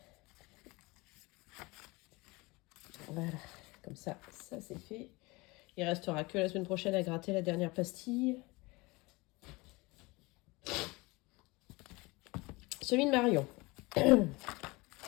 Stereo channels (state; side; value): quieter; right; 23.7 dB